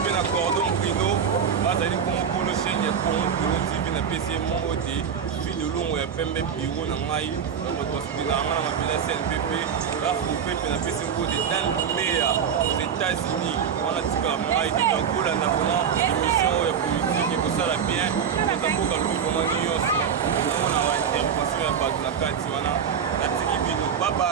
pe na cordon brino bazali comme polo chaîne ya Congo Brino TV na PC mongo te fille de longo ya pembe biro na mai na hospital na ngana mabila CNPP la coupe pe na PC mongo de dans le meilleur aux États-Unis on a tika mai de Angola na vraiment émission ya politique ko sala bien ko tamboka lu ko mani yoso na mona wa intervention ya batu na kati wana atiki bino bye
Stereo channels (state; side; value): quieter; left; 7.5 dB